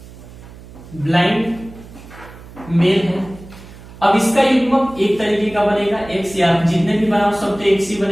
ब्लाइंड मेल है। अब इसका युग्मक एक तरीके का बनेगा एक्स, या जितने भी बनाओ सब तो एक्स ही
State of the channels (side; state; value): right; noise; hum, 18 dB below the sound